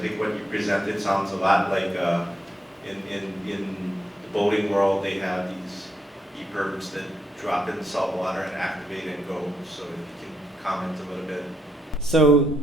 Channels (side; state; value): both; normal; correlation 0.79